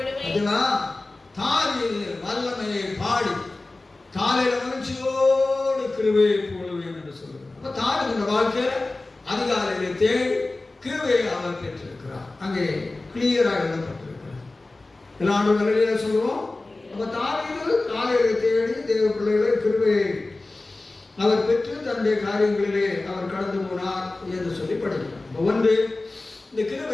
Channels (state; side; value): quieter; right; 3.1 dB